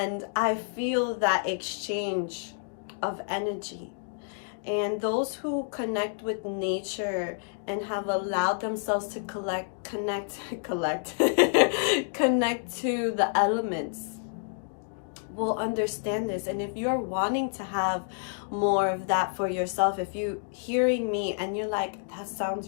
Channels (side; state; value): right; silent; digital silence